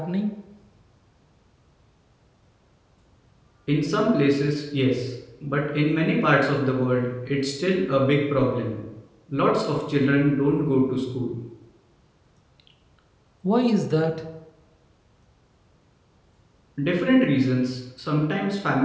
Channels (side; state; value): both; identical; correlation 1.00